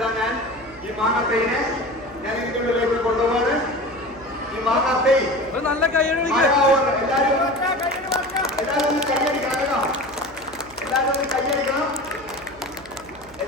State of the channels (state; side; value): noise; right; hum, 23 dB below the sound